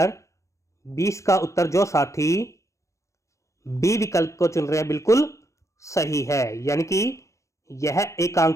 20 का उत्तर जो साथी बी विकल्प को चुन रहे हैं बिल्कुल सही है, यानी कि यह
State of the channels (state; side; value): late; right; 0.15 ms